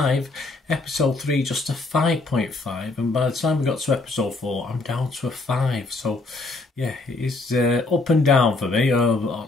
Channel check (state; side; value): quieter; right; 3.3 dB